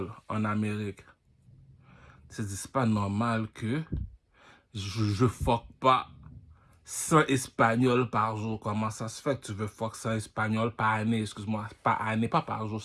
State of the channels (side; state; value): both; identical; correlation 1.00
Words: en Amérique. C'est pas normal que je fuck pas 100 Espagnols par jour. Comment ça se fait que tu veux fuck 100 Espagnols par année? Excuse-moi, par année, pas par jour.